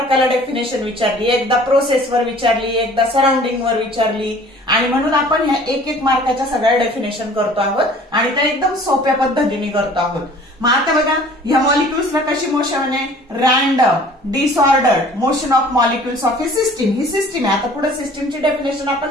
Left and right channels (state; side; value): normal; both; correlation 0.50